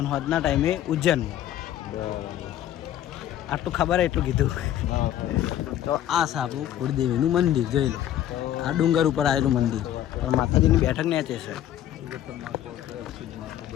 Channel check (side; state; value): right; quieter; 11.9 dB